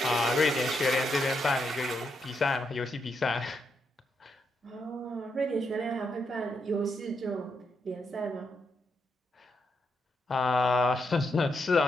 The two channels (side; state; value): both; normal; correlation 0.81